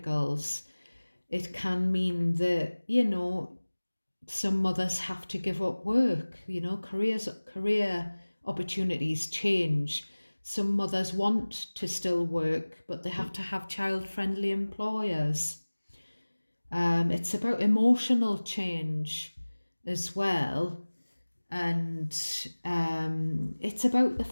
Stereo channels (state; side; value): inverted; both; correlation -1.00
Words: It can mean that, some mothers have to give up work, career opportunities change. Some mothers want to still work, but they have to have child-friendly employers. It's about emotional change as well. And it's about the